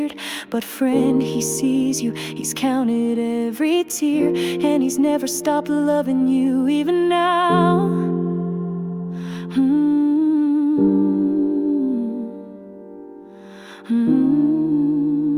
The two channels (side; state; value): both; identical; correlation 1.00